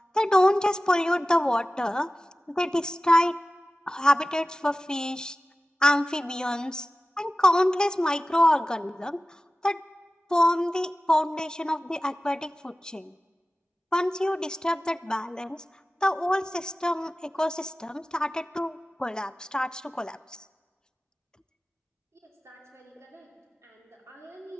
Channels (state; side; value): normal; both; correlation 0.96